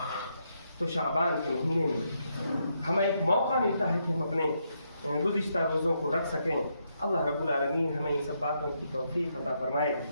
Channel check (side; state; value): both; inverted; correlation -0.79